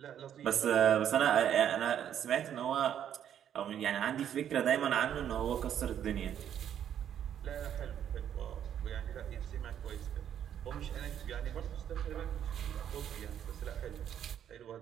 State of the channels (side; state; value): left; quieter; 9.7 dB